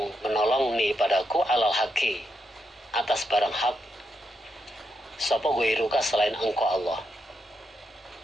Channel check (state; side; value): normal; both; correlation 0.82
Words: menolong ni padaku alal haqi, atas barang hak, sapa ghairuka selain engkau Allah.